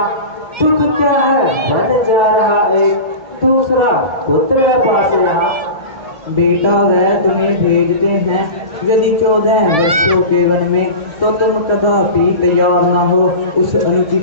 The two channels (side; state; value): left; late; 1.7 ms